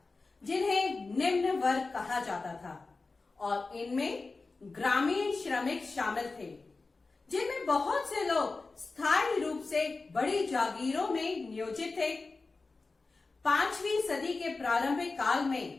जिन्हें निम्न वर्ग कहा जाता था, और इनमें ग्रामीण श्रमिक शामिल थे, जिनमें बहुत से लोग स्थायी रूप से बड़ी जागीरों में नियोजित थे। 5वीं सदी के प्रारंभिक काल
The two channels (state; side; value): quieter; right; 3.8 dB